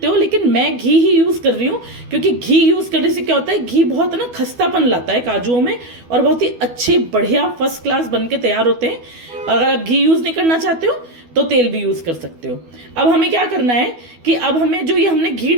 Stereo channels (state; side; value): late; left; 12 ms